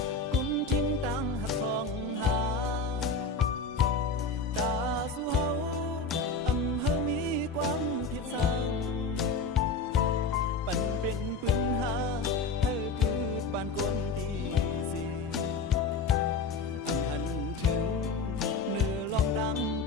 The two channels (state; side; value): quieter; right; 3.8 dB